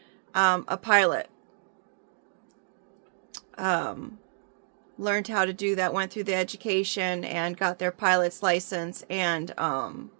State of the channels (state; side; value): silent; left; digital silence